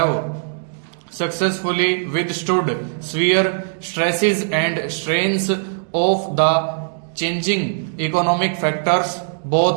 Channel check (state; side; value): silent; left; digital silence